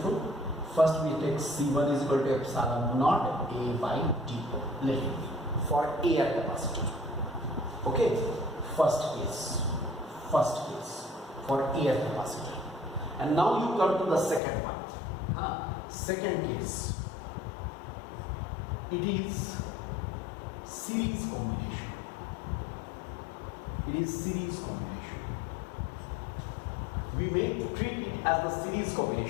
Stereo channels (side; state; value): right; drops out; at 14.4 s